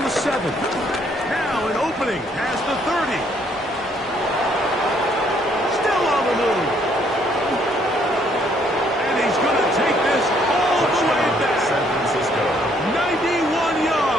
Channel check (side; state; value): both; normal; correlation 0.67